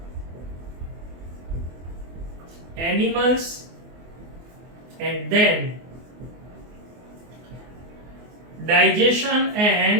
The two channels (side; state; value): left; late; 24 ms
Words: animals, and then digestion